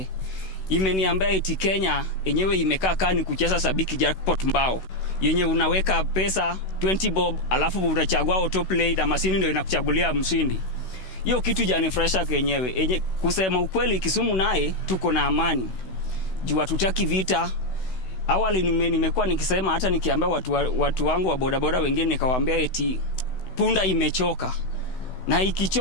Imeniambia eti Kenya yenyewe imekaa kani kucheza sabiki jackpot mbao. Yenye unaweka pesa 20 bob alafu unachagua autoplay na mashini ndio inakuchagulia mshindi. Hiyo kitu janifresha kenyewe. Kusema ukweli Kisumu naye tuko na amani. Juu hatutaki vita. awali nimekuwa nikisema, hata nikiambia watu wangu wa bodaboda wengine, nikawaambia eti punda imechoka, na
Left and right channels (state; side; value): late; right; 16 ms